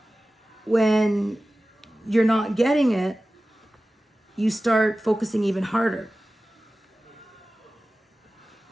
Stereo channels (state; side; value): normal; both; correlation 0.96